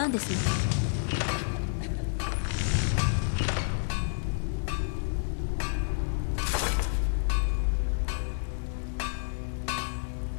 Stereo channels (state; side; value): silent; right; 58 dB below the other